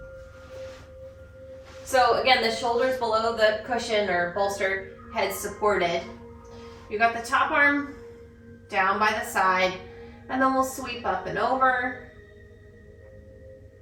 So again, the shoulders below the cushion or bolster, head supported. You got the top arm down by the side, and then we'll sweep up and over,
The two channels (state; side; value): identical; both; correlation 1.00